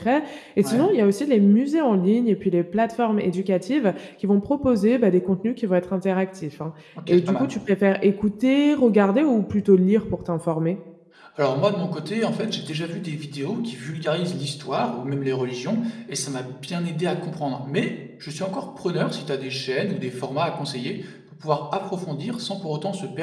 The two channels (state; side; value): identical; both; correlation 1.00